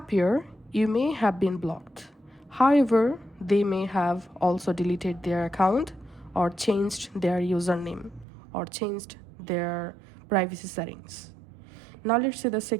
you may have been blocked. However, they may have also deleted their account or changed their username or changed their privacy settings. Now let's see the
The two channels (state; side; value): drops out; left; at 8.2 s